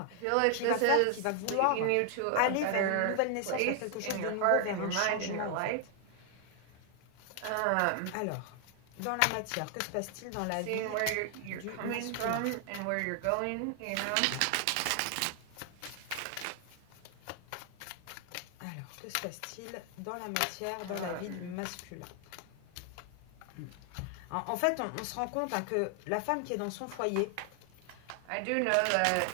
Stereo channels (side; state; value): both; different; correlation 0.00